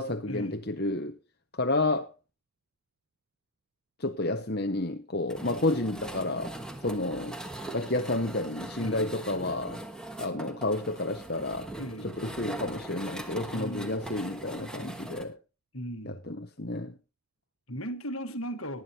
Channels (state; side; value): normal; both; correlation 0.06